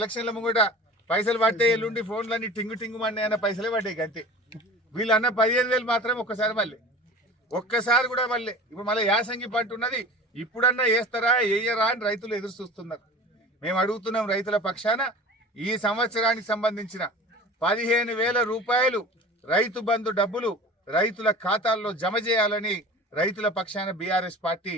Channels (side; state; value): both; normal; correlation 0.38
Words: ముంగట పైసలు పట్టే ఎల్లుండి ఫోన్లన్నీ టింగు టింగు మన్నీ అన్న పైసలే పడ్డాయి అంతే. వీళ్ళు అన్న 15,000 మాత్రం ఒక్కసారి కూడా మళ్ళీ ఇప్పుడు మళ్ళీ యాసంగి పంట ఉన్నది, ఇప్పుడన్నా వేస్తారా వేయరా అని రైతులు ఎదురు చూస్తున్నారు. మేము అడుగుతున్నాం రైతుల పక్షాన ఈ సంవత్సరానికి సంబంధించిన 15,000 రూపాయలు రైతు బంధు డబ్బులు రైతుల ఖాతాల్లో జమ చేయాలని రైతుల పక్షాన బీఆర్ఎస్ పార్టీ